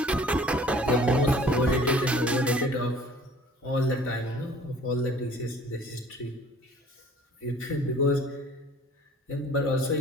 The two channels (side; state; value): both; normal; correlation 0.51